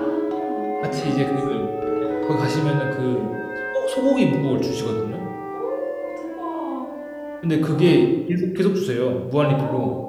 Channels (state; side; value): identical; both; correlation 1.00